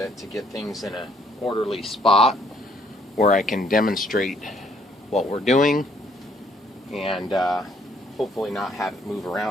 to get things in an orderly spot where I can demonstrate what we're doing, and hopefully not have it move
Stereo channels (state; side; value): normal; both; correlation 0.66